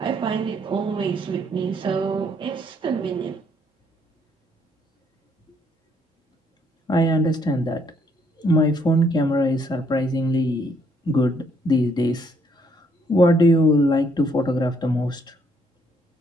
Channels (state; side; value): normal; both; correlation 0.69